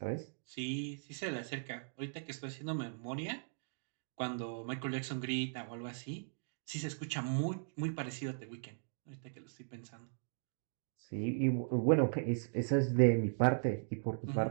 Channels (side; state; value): left; silent; digital silence